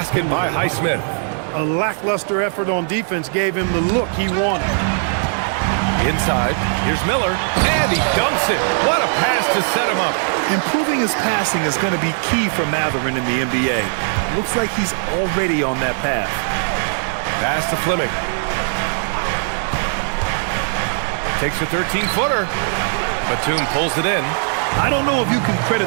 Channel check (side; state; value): left; silent; digital silence